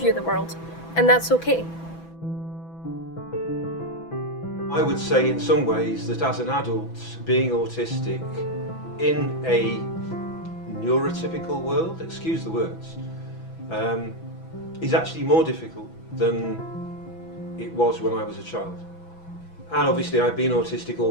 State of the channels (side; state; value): right; late; 6.1 ms